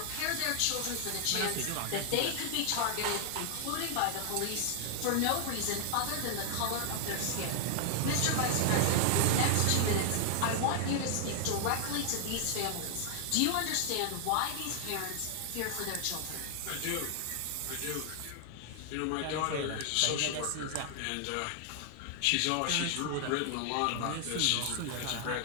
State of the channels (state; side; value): different; both; correlation 0.00